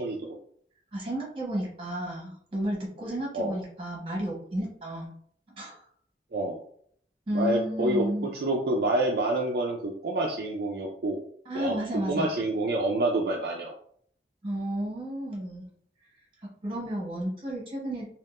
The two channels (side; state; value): both; normal; correlation 0.45